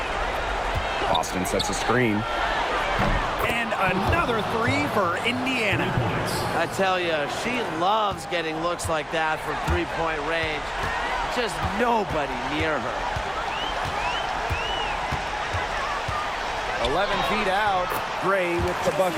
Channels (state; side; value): identical; both; correlation 1.00